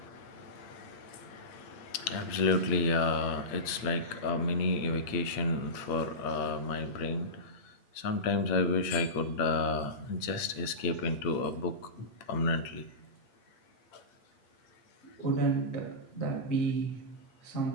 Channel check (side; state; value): right; late; 8.7 ms